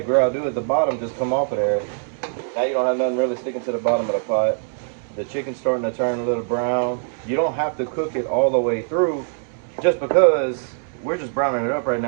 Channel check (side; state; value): left; silent; digital silence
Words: gravy at the bottom just come off of there. Now you don't have nothing really sticking to the bottom of the pot. The chicken's starting to turn a little brown. You don't have to cook it all the way through just because we're just browning it up right